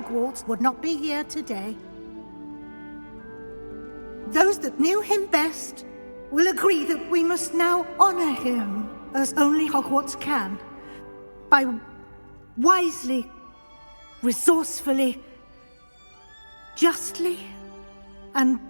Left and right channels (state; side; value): inverted; both; correlation -1.00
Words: would not be here today. Those that knew him best will agree that we must now honor him as only Hogwarts can, by wisely, resourcefully, justly, and